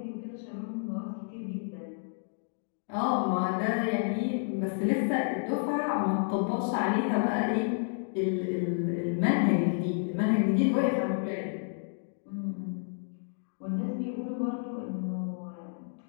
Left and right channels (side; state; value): right; silent; digital silence